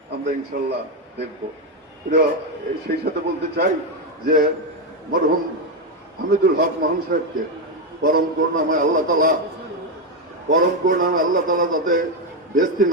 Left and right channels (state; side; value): normal; both; correlation 0.07